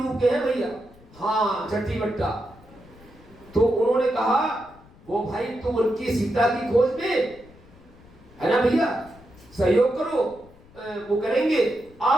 के हैं भैया, हाँ चट्टी बट्टा। तो उन्होंने कहा, वो भाई तुम उनकी सीता की खोज में है ना भैया, सहयोग करो, वो करेंगे।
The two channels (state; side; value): noise; left; rumble, 24 dB below the sound